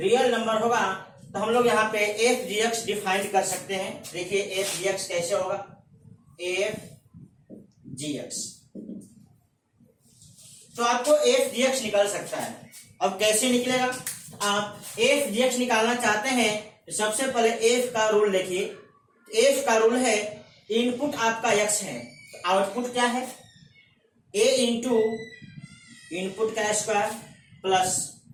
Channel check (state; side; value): identical; both; correlation 1.00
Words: नंबर होगा। तो हम लोग यहाँ पे एफ जी एक्स डिफाइन कर सकते हैं। देखिए एफ जी एक्स कैसे होगा, एफ जी एक्स, तो आपको एफ जी एक्स निकल सकता है। अब कैसे निकलेगा? आप एफ जी एक्स निकालना चाहते हैं तो सबसे पहले एफ का रूल देखिए। एफ का रूल है इनपुट आपका एक्स है तो आउटपुट क्या है? ए इंटू इनपुट का square plus